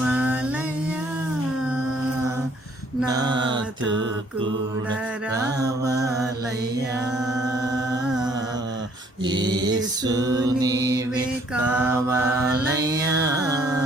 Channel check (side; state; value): both; normal; correlation 0.63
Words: నాతో కూడా రావాలయ్యా. యేసు నీవే కావాలయ్యా,